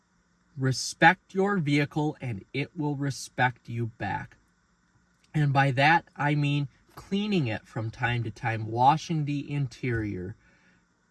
Respect your vehicle and it will respect you back. And by that, I mean cleaning it from time to time, washing the interior,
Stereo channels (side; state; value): both; identical; correlation 1.00